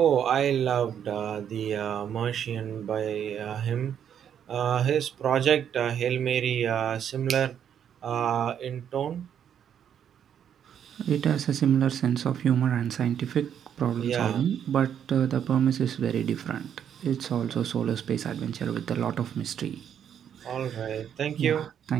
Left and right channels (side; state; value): left; quieter; 8.9 dB